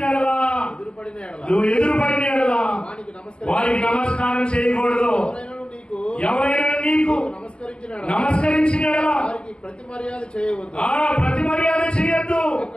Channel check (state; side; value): late; right; 0.054 ms